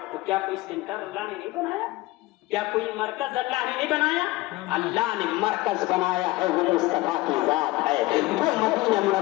तो क्या कोई सेंटर अल्लाह ने नहीं बनाया? क्या कोई मरकज अल्लाह ने नहीं बनाया? अल्लाह ने मरकज बनाया है, वो मुस्तफा की जात है, वो मदीना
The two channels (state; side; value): quieter; right; 19.8 dB